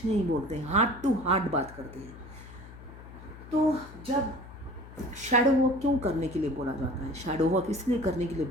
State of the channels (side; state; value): left; noise; hum, 16 dB below the sound